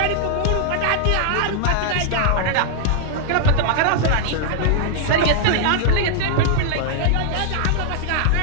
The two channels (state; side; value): different; both; correlation -0.01